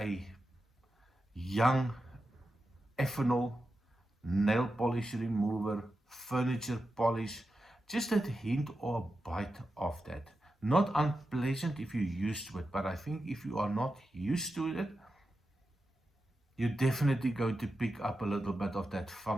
young ethanol, nail polish remover, furniture polish, just that hint or a bite of that. Not unpleasant if you're used to it, but I think if you are not used to it, you're definitely going to pick up a little bit of that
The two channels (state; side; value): normal; both; correlation 0.90